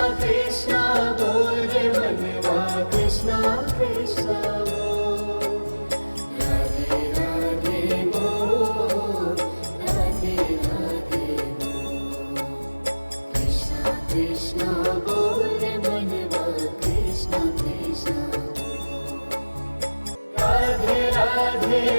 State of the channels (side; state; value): both; inverted; correlation -1.00